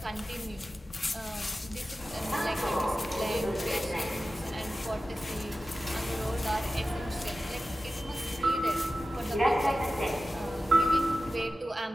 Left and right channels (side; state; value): both; normal; correlation 0.94